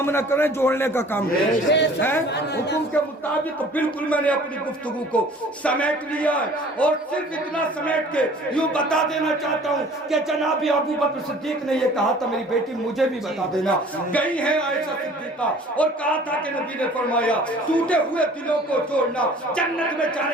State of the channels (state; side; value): normal; both; correlation 0.49